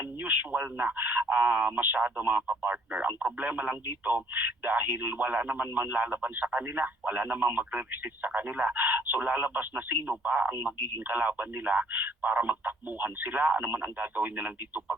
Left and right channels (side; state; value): both; normal; correlation 0.60